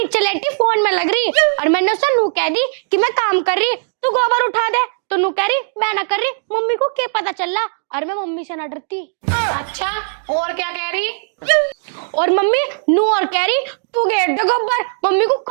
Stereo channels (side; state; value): left; silent; digital silence